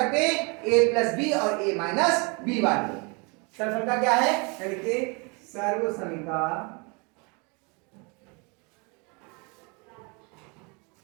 हैं a प्लस बी और a माइनस बी वाले। सर्वसम का क्या है? देखिए सर्वसमिका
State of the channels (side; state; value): left; quieter; 31.3 dB